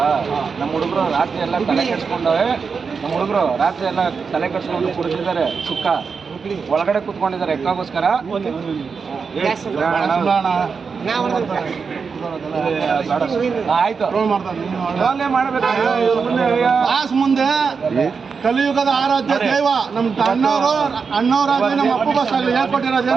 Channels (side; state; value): left; quieter; 5.4 dB